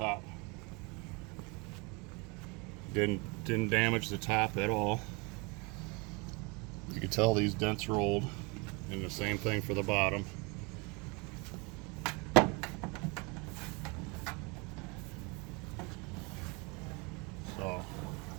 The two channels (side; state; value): left; quieter; 29.3 dB